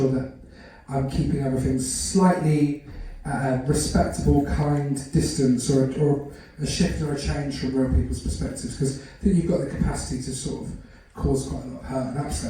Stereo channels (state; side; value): identical; both; correlation 1.00